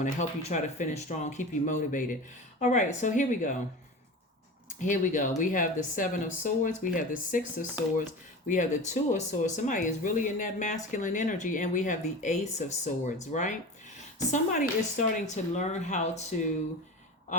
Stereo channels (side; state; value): both; normal; correlation 0.31